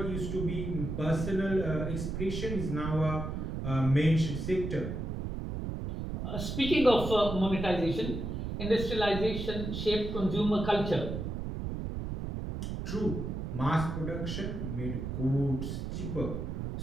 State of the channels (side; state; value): right; noise; rumble, 4 dB below the sound